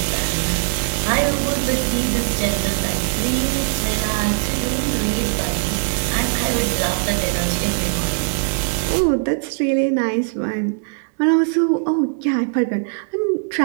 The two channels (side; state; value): left; silent; digital silence